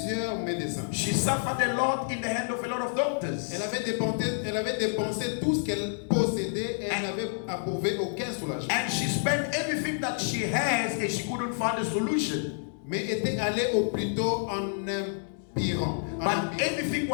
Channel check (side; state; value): right; silent; digital silence